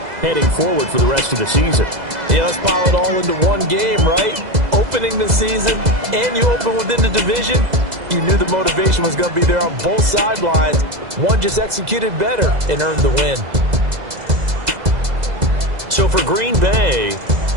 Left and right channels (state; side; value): late; left; 2.0 ms